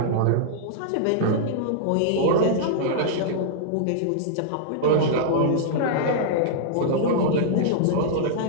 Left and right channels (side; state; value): both; different; correlation -0.02